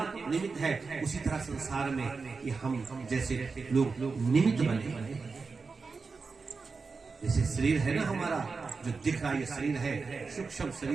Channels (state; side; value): quieter; left; 4.6 dB